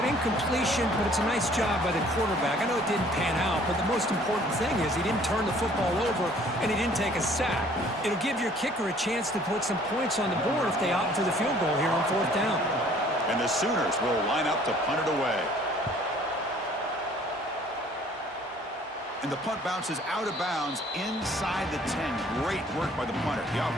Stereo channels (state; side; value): normal; both; correlation 0.56